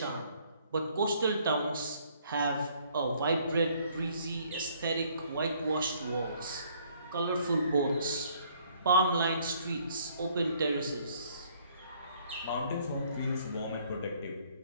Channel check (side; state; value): both; inverted; correlation -0.63